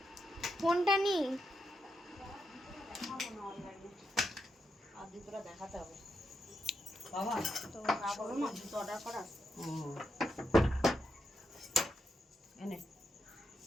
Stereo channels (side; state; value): both; normal; correlation 0.83